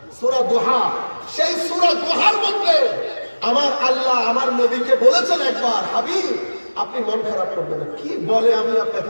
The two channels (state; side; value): inverted; both; correlation -1.00